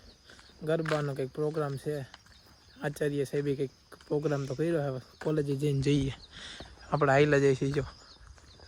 ગરબાનો કંઈક પ્રોગ્રામ છે, આચાર્ય સાહેબે કંઈક પ્રોગ્રામ તો કર્યો. હવે કોલેજે જઈને જઈએ. આપણે હાઈલા જઈશું જો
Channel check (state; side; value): identical; both; correlation 1.00